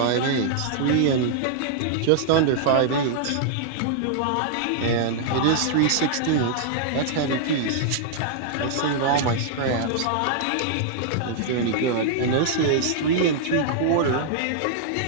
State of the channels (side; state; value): both; different; correlation -0.01